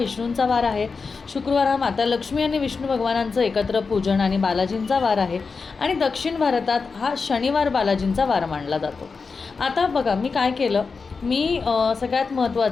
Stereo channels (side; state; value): right; quieter; 4.7 dB